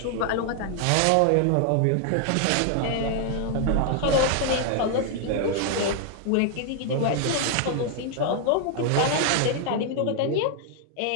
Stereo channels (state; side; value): different; both; correlation 0.00